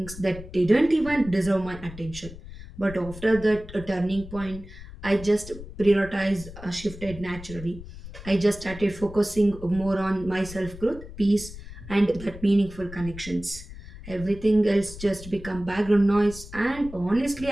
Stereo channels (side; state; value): left; noise; rumble, 14 dB below the sound